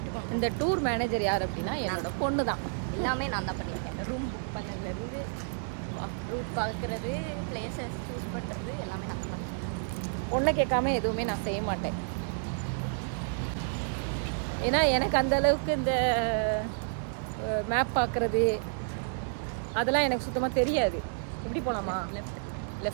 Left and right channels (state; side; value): silent; left; digital silence